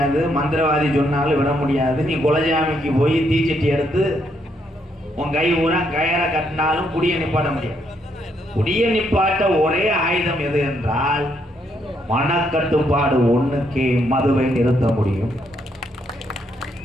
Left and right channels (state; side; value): normal; both; correlation 0.75